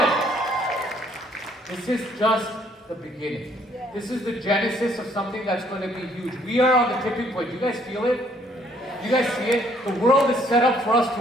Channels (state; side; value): normal; both; correlation 0.65